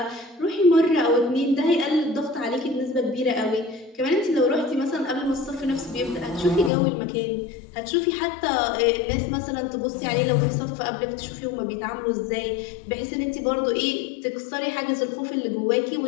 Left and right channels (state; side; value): drops out; right; at 6.7 s